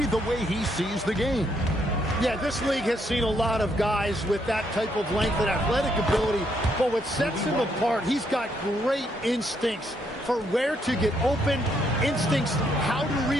the way he sees the game? Yeah, this league has seen a lot of guys with that type of length and athletic ability. But what sets him apart, he's got great instincts for where to get open, instincts how to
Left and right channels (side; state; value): both; normal; correlation 0.74